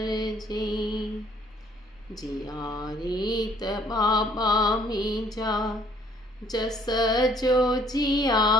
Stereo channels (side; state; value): both; normal; correlation 0.61